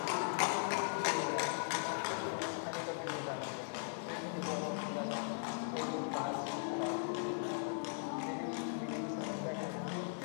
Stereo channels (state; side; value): silent; right; digital silence